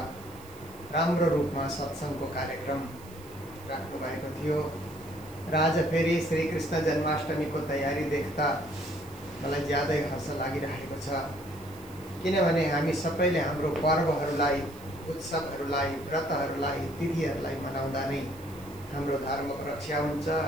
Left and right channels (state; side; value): noise; right; hiss, 22 dB below the sound